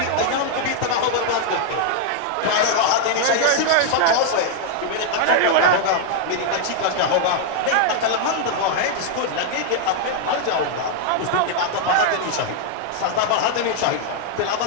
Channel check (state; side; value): different; both; correlation 0.00